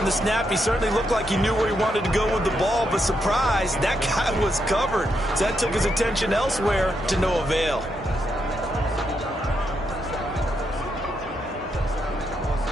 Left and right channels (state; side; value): normal; both; correlation 0.80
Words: the snap, he certainly looked like he knew where he wanted to go with the ball, but surprise, that guy was covered. So that took his attention elsewhere to no avail.